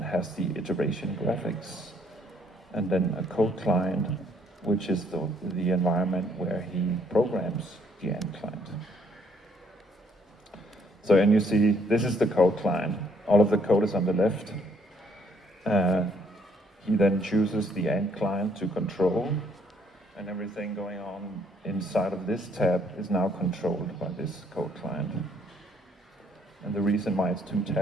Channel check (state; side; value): normal; both; correlation 0.67